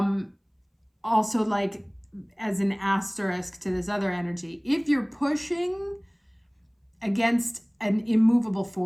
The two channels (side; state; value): both; identical; correlation 1.00